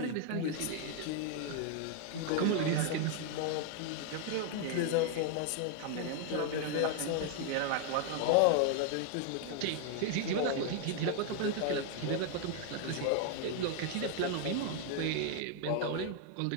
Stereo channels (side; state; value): both; different; correlation 0.00